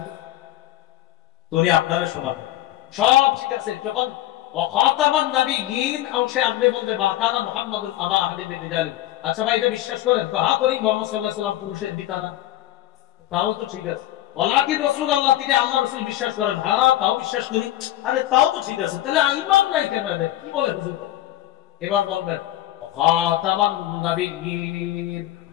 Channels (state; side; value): quieter; right; 14.2 dB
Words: তো, উনি আপনারা শোনাবেন সব ঠিক আছে। যখন ওয়াখাতামান নবিয়্যিন অংশে আপনি বলবেন মা কানা মুহাম্মাদুন আবা আহাদিন মিন রিজালিকুম, আচ্ছা ভাই এটা বিশ্বাস করেন? তো হ্যাঁ করি, মুহাম্মদ সাল্লাল্লাহু আলাইহি ওয়াসাল্লাম পুরুষের পিতা না, তাও তো ঠিক আছে। ওয়ালাকিন রাসূলুল্লাহ, তিনি আল্লাহর রাসূল বিশ্বাস করেন, হ্যাঁ তাও বিশ্বাস করি, আরে তাও তো ঠিক আছে, তাহলে ঈমান নাই কেন? কি বলে হুজুর? এবার বলবেন ওয়াখাতামান নবিয়্যিন,